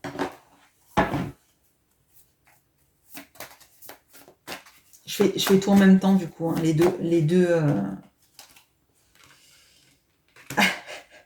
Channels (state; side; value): identical; both; correlation 1.00